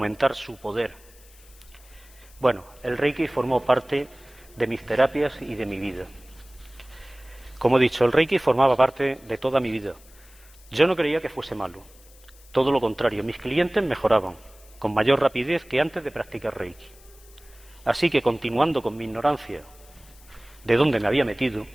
su poder. Bueno, el Reiki formó parte de mis terapias y de mi vida. Como he dicho, el Reiki formaba parte de toda mi vida. Yo no creía que fuese malo. Todo lo contrario, mis clientes mejoraban con mayor rapidez que antes de practicar Reiki. Así que, continuando con mi ignorancia de dónde me había metido,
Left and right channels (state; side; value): noise; left; hiss, 25 dB below the sound